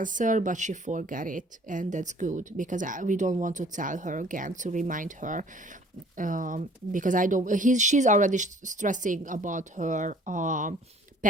but she forgot it, and that's good, because we don't want to tell her again, to remind her, because she's already stressing about her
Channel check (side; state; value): both; normal; correlation 0.54